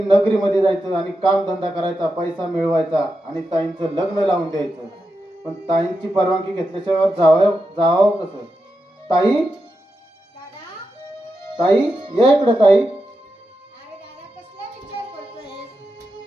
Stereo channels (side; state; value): both; normal; correlation 0.88